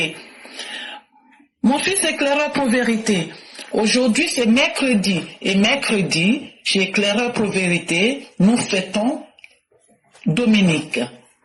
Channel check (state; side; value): identical; both; correlation 1.00